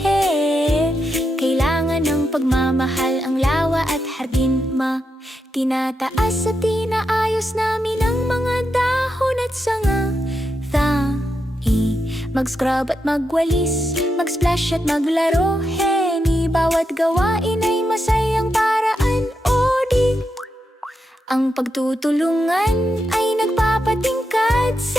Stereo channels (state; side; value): normal; both; correlation 0.85